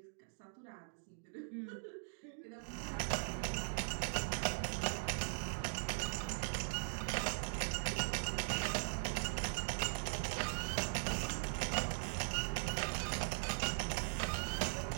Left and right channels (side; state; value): left; silent; digital silence